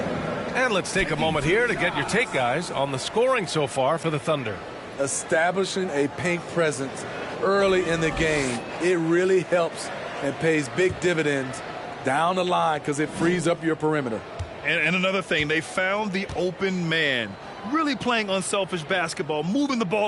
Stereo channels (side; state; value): both; identical; correlation 1.00